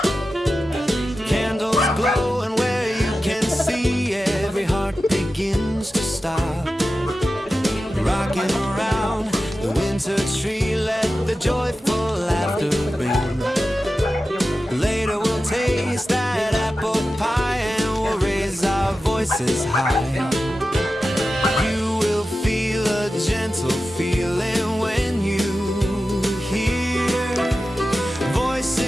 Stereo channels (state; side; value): normal; both; correlation 0.93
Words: Candles glow and where you can see every heart begins to stop. Rocking around the winter tree, let the joyful laughter ring. Later we'll taste that apple pie and we'll raise our voices high. You will feel a gentle feeling when you hear